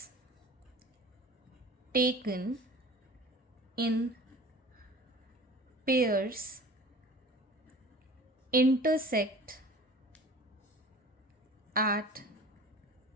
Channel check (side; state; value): both; normal; correlation 0.43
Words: taken in pairs intersect at